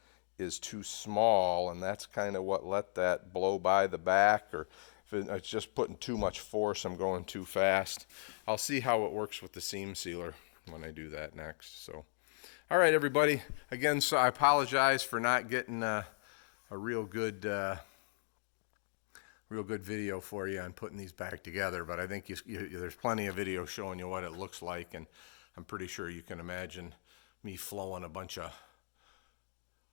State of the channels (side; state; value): right; silent; digital silence